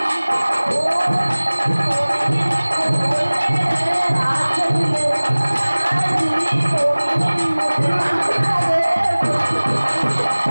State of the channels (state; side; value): inverted; both; correlation -1.00